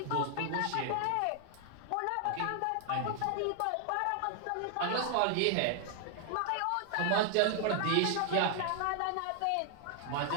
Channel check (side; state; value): both; different; correlation 0.00